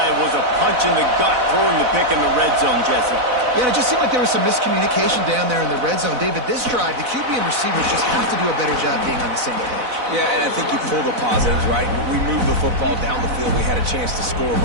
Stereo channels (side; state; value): left; late; 4.0 ms